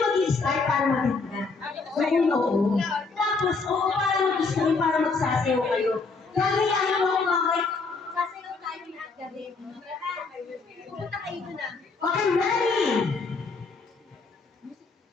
mag-start para maganda. Oo. Tapos, para mag-start, para magsasayaw kayo. Gagayahin mo ako bakit? Sasayaw tayo lahat gabi. Pupunta kayo doon na. Okay, ready?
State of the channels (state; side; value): quieter; right; 4.2 dB